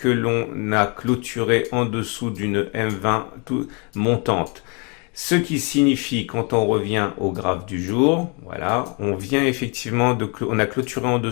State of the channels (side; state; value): right; quieter; 33.3 dB